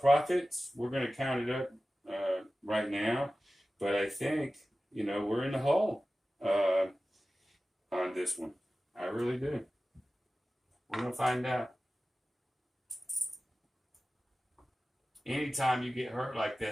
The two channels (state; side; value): normal; both; correlation 0.95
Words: We're going to count it up right now, but I think, you know, we're in the hole on this one. I really do. We're going to find out. Anytime you get hurt like